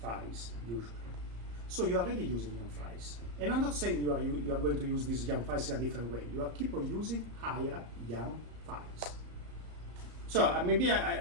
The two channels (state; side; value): late; left; 34 ms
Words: files usually. So you are already using YAM files. And I'm not saying you are going to use these YAM files in a different way. You are keep on using hire YAM files. So maybe